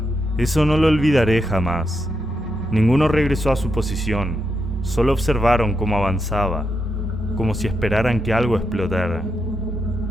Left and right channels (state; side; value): normal; both; correlation 0.83